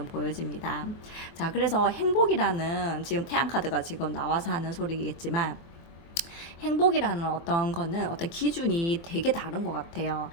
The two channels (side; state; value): right; late; 23 ms